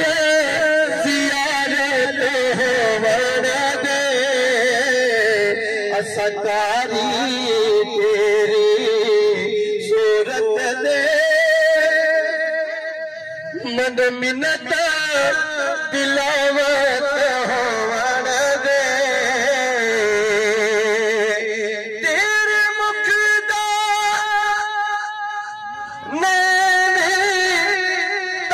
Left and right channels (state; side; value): identical; both; correlation 1.00